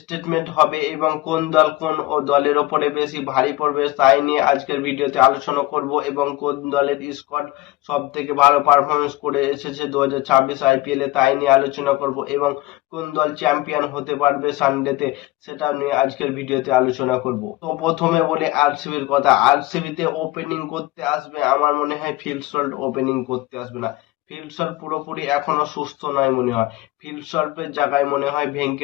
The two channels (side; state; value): right; quieter; 19.0 dB